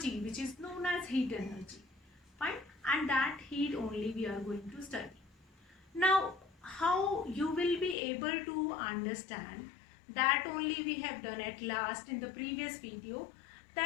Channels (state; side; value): drops out; right; at 8.0 s